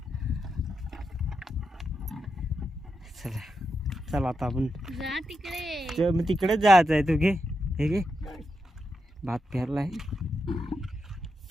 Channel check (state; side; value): normal; both; correlation 0.86